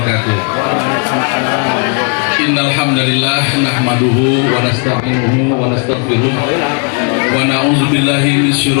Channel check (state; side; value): quieter; right; 38.6 dB